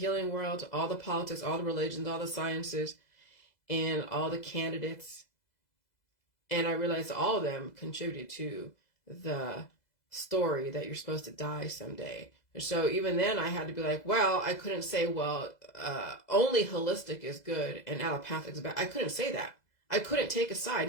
world, all the politics, all the religions, all the sciences, and all the candidates. And I realized all of them contributed to the story that you're supposed to die someday. And so even then I had to be like, well, I couldn't say, only holistic is good and allopathic is bad. I couldn't say that. I couldn't take a side.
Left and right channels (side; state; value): right; late; 2.0 ms